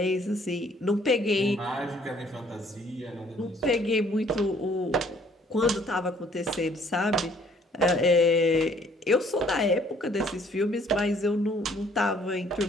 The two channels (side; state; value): both; normal; correlation 0.61